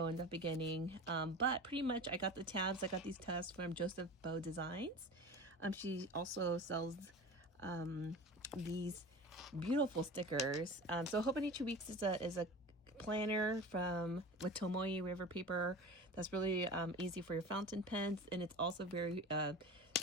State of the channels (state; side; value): normal; both; correlation 0.34